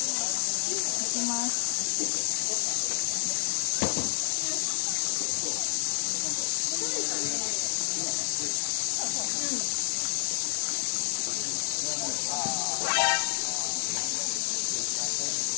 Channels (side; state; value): right; silent; digital silence